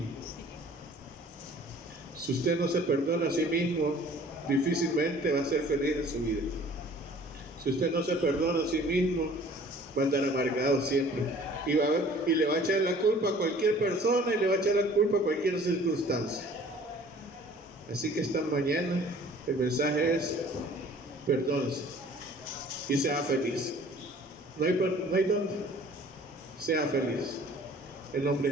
Si usted no se perdona a sí mismo, difícilmente va a ser feliz en su vida. Si usted no se perdona a sí mismo, va a andar amargado siempre. Y le va a echar la culpa a cualquier persona y le va a echar la culpa a cualquier circunstancia. Así que esta mañana el mensaje es: perdónese y sea feliz. No hay dónde. Sea feliz. En nombre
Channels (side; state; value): both; normal; correlation 0.51